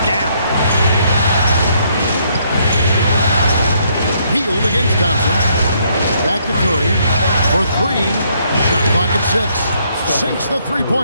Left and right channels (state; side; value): inverted; both; correlation -0.70